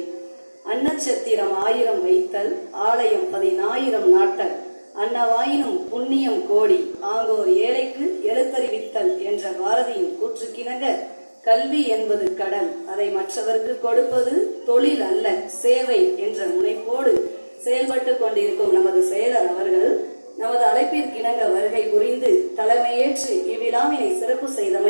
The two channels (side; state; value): both; inverted; correlation -1.00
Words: அன்னச்சத்திரம் 1000 வைத்தல், ஆலயம் 10,000 நாட்டல், அன்னவாயினும் புண்ணியம் கோடி, ஆங்கோர் ஏழைக்கு எழுத்தறிவித்தல் என்ற பாரதியின் கூற்றுக்கிணங்க, கல்வி என்பது கடல், அதை மற்றவருக்கு கொடுப்பது தொழில் அல்ல சேவை என்ற முனைப்போடு செயல்பட்டு கொண்டிருக்கும் நமது செயலர் அவர்கள் நமது அழைப்பிற்கிணங்க வருகை புரிந்து தலைமையேற்று இவ்விழாவினை சிறப்பு